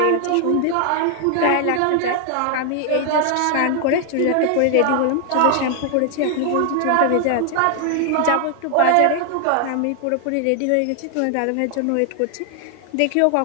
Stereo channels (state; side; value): different; both; correlation 0.00